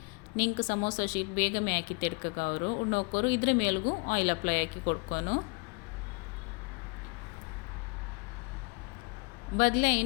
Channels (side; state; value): right; quieter; 31.9 dB